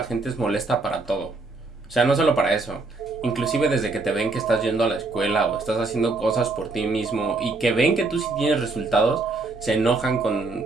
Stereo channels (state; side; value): quieter; left; 3.5 dB